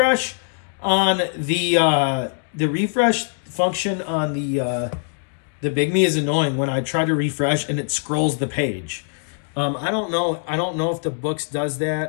on the refresh function on the Bigme is annoying when I try to refresh and it scrolls the page. I don't know if the Boox does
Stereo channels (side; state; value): right; silent; digital silence